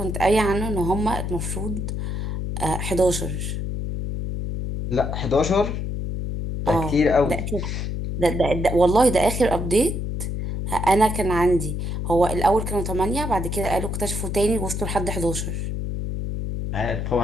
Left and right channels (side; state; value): left; noise; hum, 3 dB below the sound